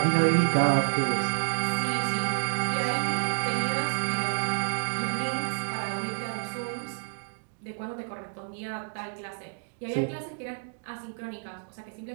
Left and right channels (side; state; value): left; silent; digital silence